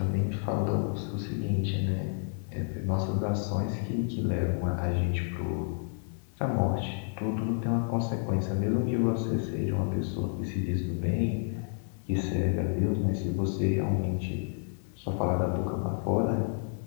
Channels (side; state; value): right; silent; 58 dB below the other